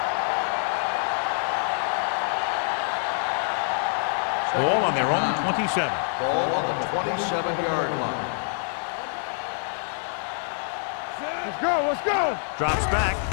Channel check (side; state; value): right; silent; 61 dB below the other